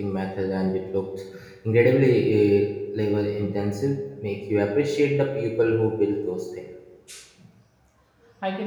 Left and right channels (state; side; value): identical; both; correlation 1.00